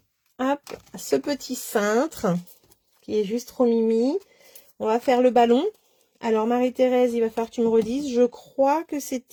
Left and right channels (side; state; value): both; identical; correlation 1.00